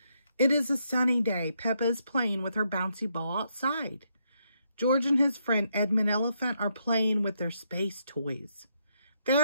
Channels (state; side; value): inverted; both; correlation -0.77